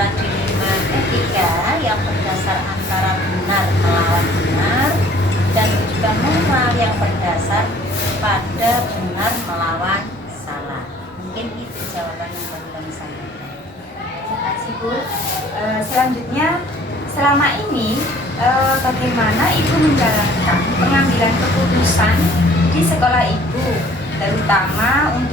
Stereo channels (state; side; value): normal; both; correlation 0.54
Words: dilema etika yang berdasar antara benar melawan benar dan juga moral yang berdasar pada benar melawan salah. Mungkin itu jawaban yang perlu kami sampaikan. Terima kasih Bu. Selanjutnya, selama ini bagaimana Ibu menjalankan pengambilan keputusan di sekolah Ibu, terutama